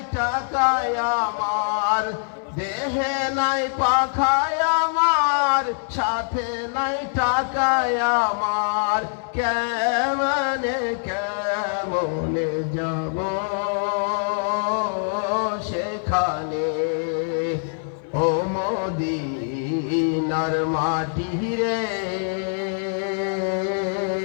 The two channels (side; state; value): right; silent; 63 dB below the other